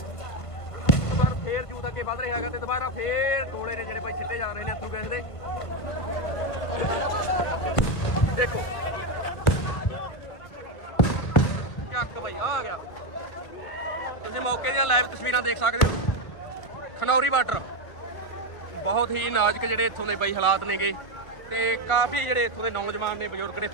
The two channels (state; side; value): late; right; 1.5 ms